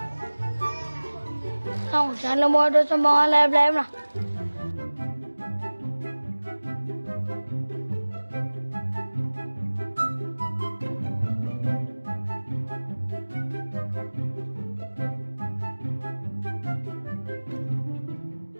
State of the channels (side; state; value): both; inverted; correlation -1.00